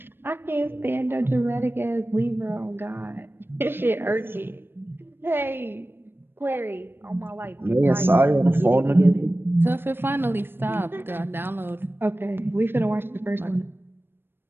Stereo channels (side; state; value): left; late; 0.10 ms